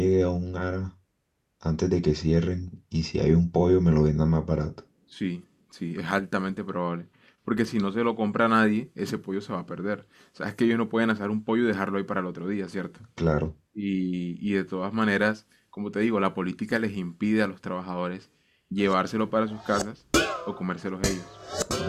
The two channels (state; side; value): identical; both; correlation 1.00